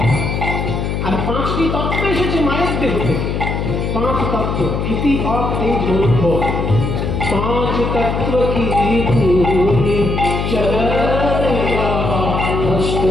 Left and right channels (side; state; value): left; noise; hum, 2 dB below the sound